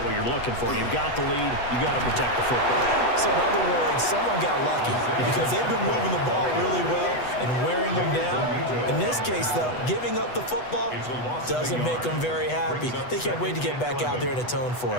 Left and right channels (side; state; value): right; late; 8.1 ms